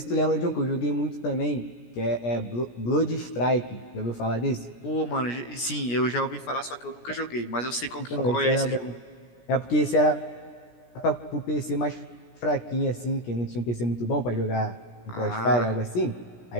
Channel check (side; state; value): right; late; 17 ms